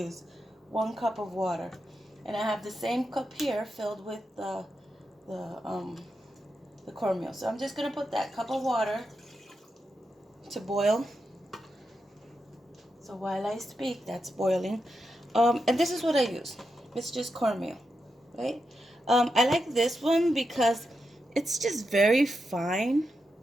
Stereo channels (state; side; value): normal; both; correlation 0.86